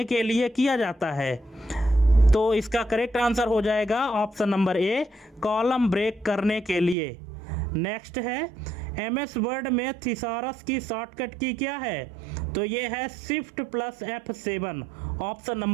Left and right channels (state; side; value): drops out; left; at 7.0 s